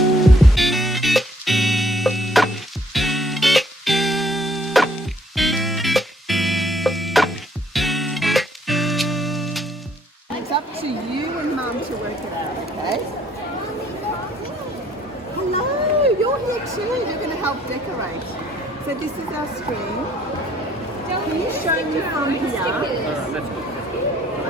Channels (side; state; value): both; normal; correlation 0.63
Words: It's up to you and Mum to work it out, okay? Hello, you're here too. You're going to help decorate. So this is our screen. Can you show me from here? Here we